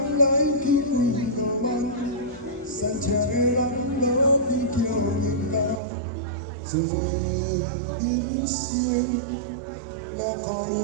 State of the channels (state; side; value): drops out; left; at 5.8 s